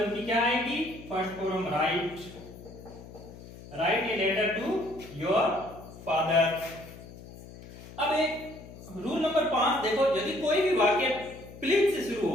की क्या आएगी, first form, right. Right a letter to your father. अब एक रूल नंबर 5 देखो, यदि कोई भी वाक्य प्लीज से शुरू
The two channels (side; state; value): left; noise; hum, 16 dB below the sound